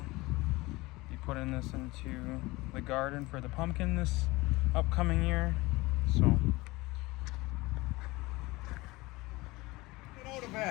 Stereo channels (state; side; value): quieter; right; 21.6 dB